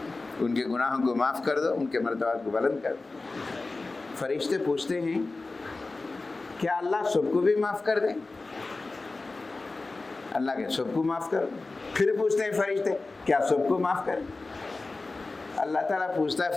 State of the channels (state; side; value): quieter; right; 3.4 dB